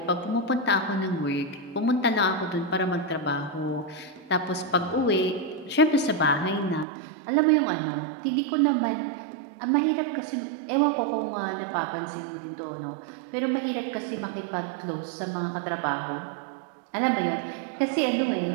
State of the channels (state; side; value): drops out; left; at 6.9 s